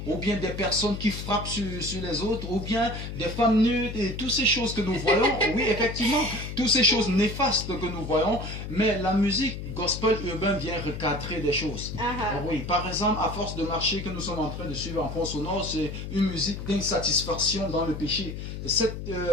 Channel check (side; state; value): left; noise; hum, 7 dB below the sound